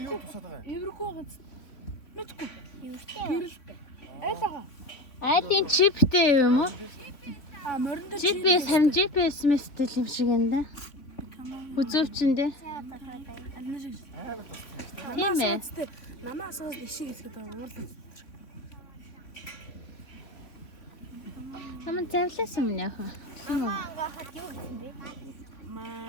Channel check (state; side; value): late; right; 3.5 ms